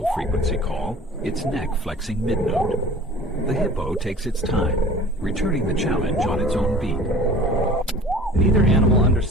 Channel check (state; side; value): normal; both; correlation 0.44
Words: call, its neck flexing mid-note. The hippo takes its time, returning the challenge on its own beat. Neither animal